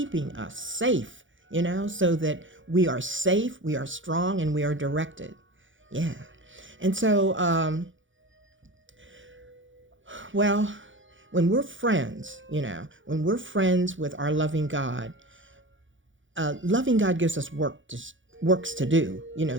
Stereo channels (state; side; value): late; left; 0.56 ms